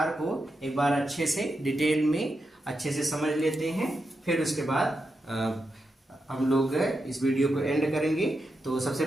को एक बार अच्छे से डिटेल में अच्छे से समझ लेते हैं, फिर उसके बाद हम लोग इस वीडियो को एंड करेंगे। तो सबसे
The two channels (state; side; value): normal; both; correlation 0.87